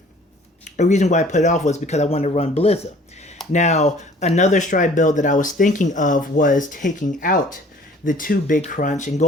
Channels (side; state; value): both; normal; correlation 0.52